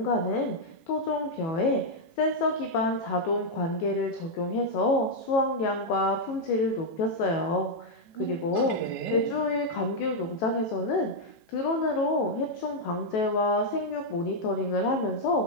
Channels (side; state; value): right; late; 18 ms